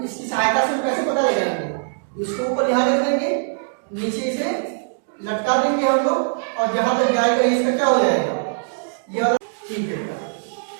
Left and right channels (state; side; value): silent; left; digital silence